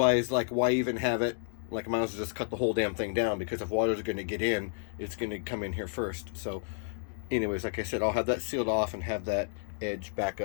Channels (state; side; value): silent; right; digital silence